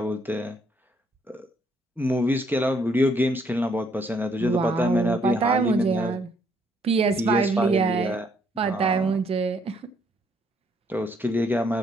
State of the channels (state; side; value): normal; both; correlation 0.69